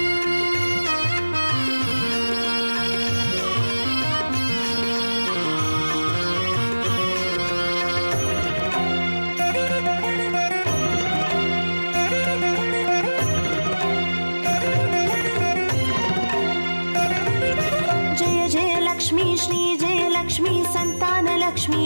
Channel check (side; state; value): both; inverted; correlation -1.00